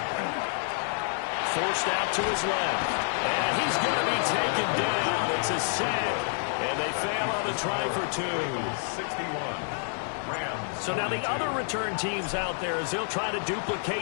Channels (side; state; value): right; silent; 59 dB below the other